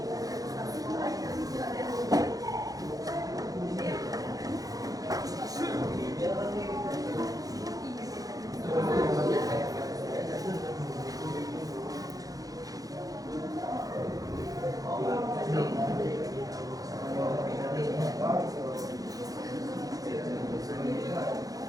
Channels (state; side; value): late; left; 0.17 ms